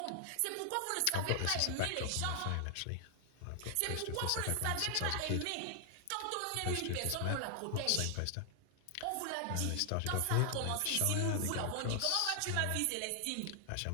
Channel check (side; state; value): both; different; correlation 0.00